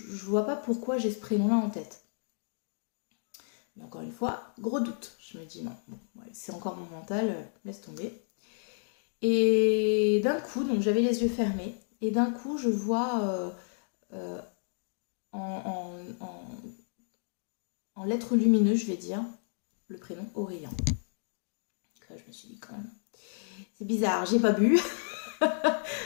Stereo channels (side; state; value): right; silent; digital silence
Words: vois pas pourquoi j'ai ce prénom-là en tête. Mais encore une fois, gros doute, je me dis non, bon, ouais, c'est encore mon mental, laisse tomber. Et d'un coup, donc j'avais les yeux fermés, et d'un coup je vois euh, en, en, en lettres lumineuses, je vais dire, le prénom Aurélien. Donc là, je me suis dit quand même, c'est bizarre, j'ai pas bu,